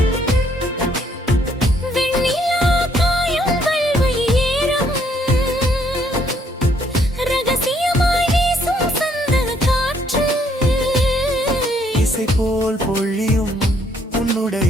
இசை போல் பொழியும்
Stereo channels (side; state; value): both; normal; correlation 0.68